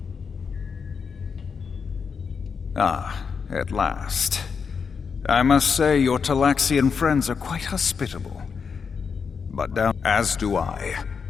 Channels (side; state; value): right; quieter; 5.9 dB